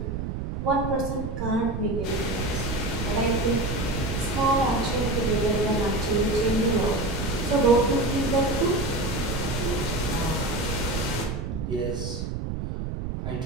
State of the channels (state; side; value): noise; right; rumble, 4 dB below the sound